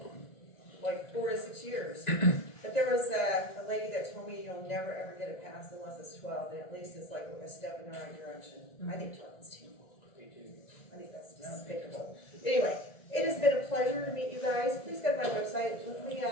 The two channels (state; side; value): late; right; 1.9 ms